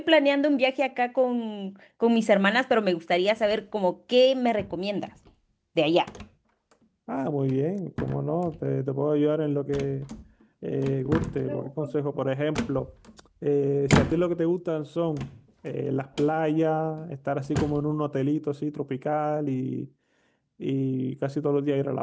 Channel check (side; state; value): both; identical; correlation 1.00